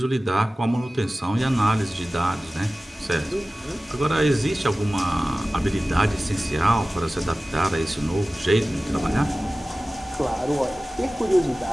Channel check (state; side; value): normal; both; correlation 0.97